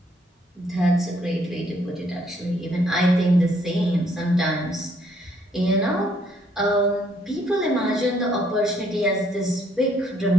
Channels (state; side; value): normal; both; correlation 0.68